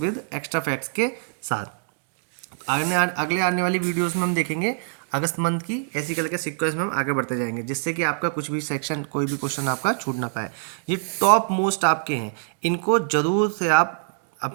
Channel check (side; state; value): left; silent; digital silence